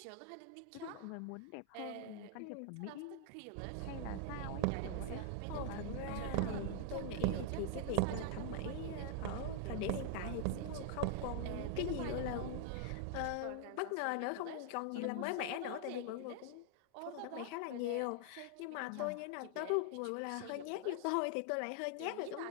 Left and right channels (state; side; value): different; both; correlation 0.00